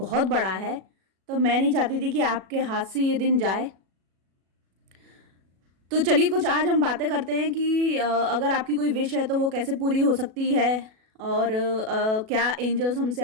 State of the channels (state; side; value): late; left; 37 ms